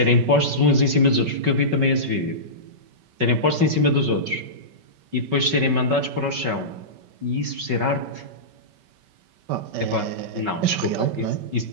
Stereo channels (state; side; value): late; left; 5.2 ms